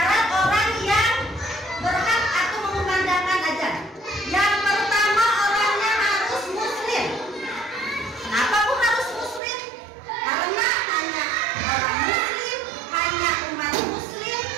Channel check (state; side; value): drops out; left; at 9.4 s